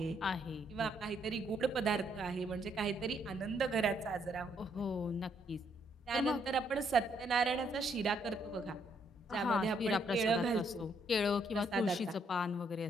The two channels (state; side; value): normal; both; correlation 0.72